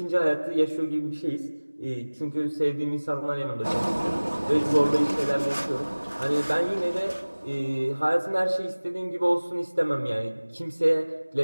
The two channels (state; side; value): inverted; both; correlation -1.00